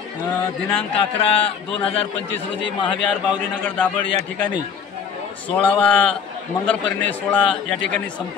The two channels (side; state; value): right; quieter; 6.8 dB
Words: दिनांक 11/2025 रोजी महाविहार बावरीनगर दाभड या ठिकाणी 16वा मंगलपरिणय सोहळा या ठिकाणी